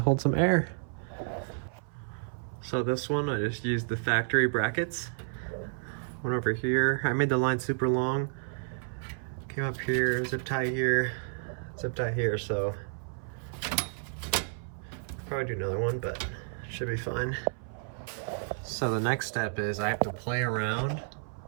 some air. So this one, I just used the factory brackets. One over here, I made the line super long. Came up here, zip tie here, so probably do another one, but should be fine. So the next step is I have to play around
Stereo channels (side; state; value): left; silent; 56 dB below the other